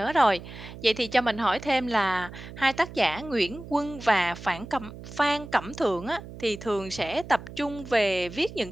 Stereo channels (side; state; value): right; noise; hum, 14 dB below the sound